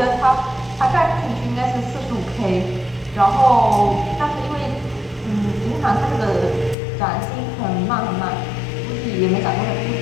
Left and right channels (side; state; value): right; drops out; at 6.8 s